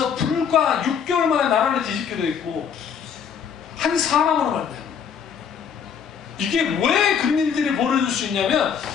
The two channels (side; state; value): right; quieter; 7.4 dB